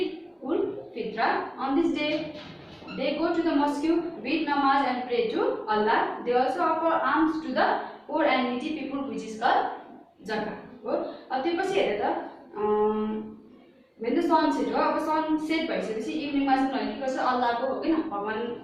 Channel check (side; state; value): both; identical; correlation 1.00